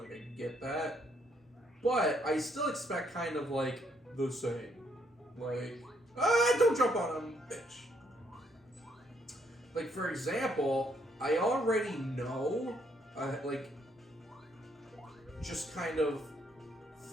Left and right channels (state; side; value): normal; both; correlation 0.71